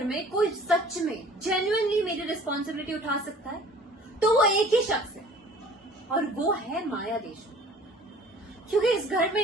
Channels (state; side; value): normal; both; correlation 0.49